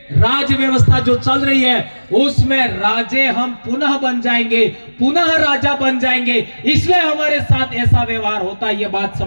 राज्य व्यवस्था जो चल रही है उसमें राजे हम पुनः बन जाएंगे, पुनः राजा बन जाएंगे, इसलिए हमारे साथ ऐसा व्यवहार होता है। यह बात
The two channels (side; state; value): both; inverted; correlation -1.00